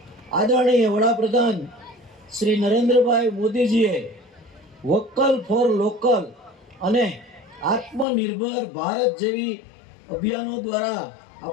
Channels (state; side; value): drops out; right; at 8.1 s